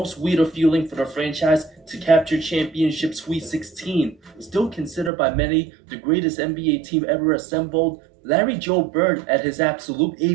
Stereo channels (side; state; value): left; drops out; at 5.1 s